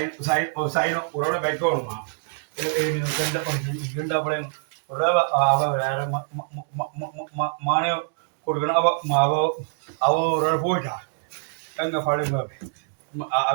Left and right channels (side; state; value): left; silent; digital silence